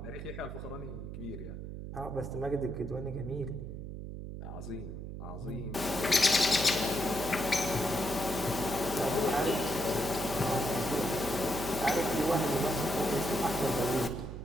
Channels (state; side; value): noise; right; hum, 8 dB below the sound